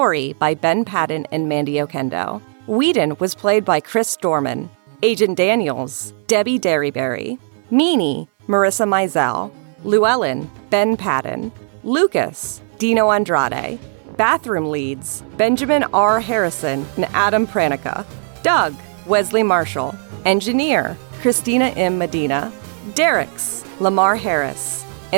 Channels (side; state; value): left; silent; 63 dB below the other